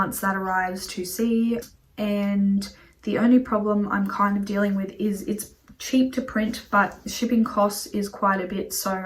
that arrives to see. And the only problem I'm kind of dealing with is it's cheap to print, but shipping costs is quite a bit. So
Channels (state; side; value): identical; both; correlation 1.00